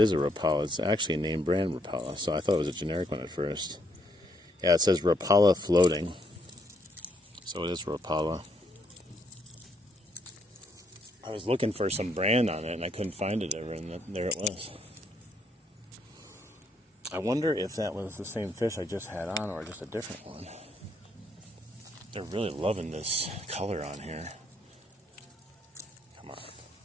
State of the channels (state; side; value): normal; both; correlation 0.73